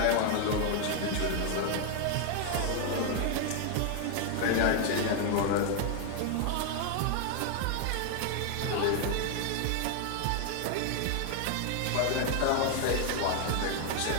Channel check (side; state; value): both; different; correlation 0.00